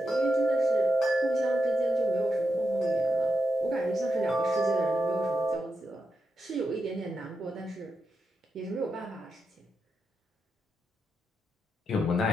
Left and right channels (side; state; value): both; normal; correlation 0.85